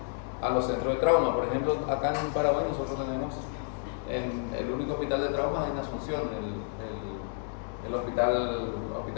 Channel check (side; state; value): right; silent; 58 dB below the other